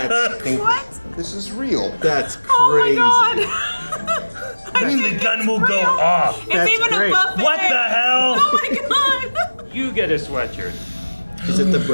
This is real. That's crazy. Oh my god. I mean, the gun will go off. It's That's even great. a buffet. What the hell? Oh my god. you get a sweatshirt. Is it the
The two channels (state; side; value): inverted; both; correlation -1.00